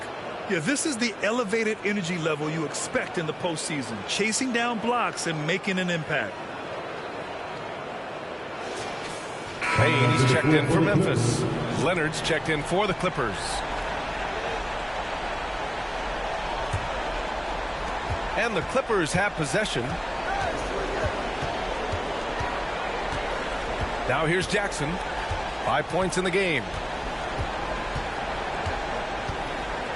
Yeah, this is the elevated energy level you expect in the postseason. Chasing down blocks and making an impact. Payne, he's checked in for Memphis. Leonard's checked in for the Clippers. And the Clippers have possession. Now here's Jackson. 5 points in the game.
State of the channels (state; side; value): identical; both; correlation 1.00